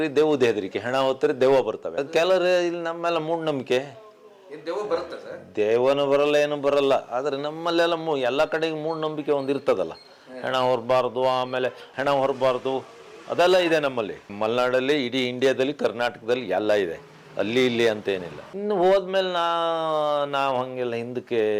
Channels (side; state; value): both; identical; correlation 1.00